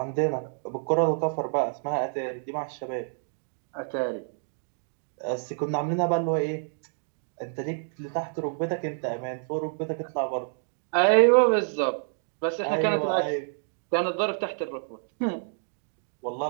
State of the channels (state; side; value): silent; left; digital silence